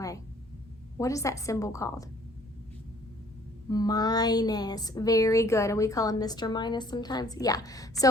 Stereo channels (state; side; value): normal; both; correlation 0.58